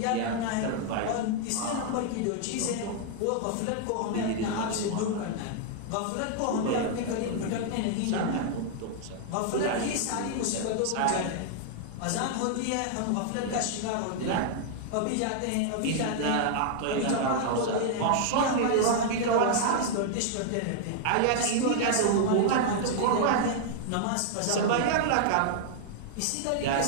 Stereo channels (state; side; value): different; both; correlation 0.00